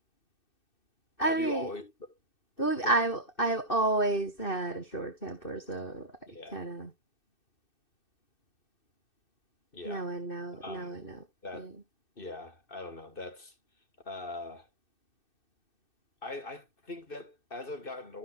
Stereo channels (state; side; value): late; right; 2.6 ms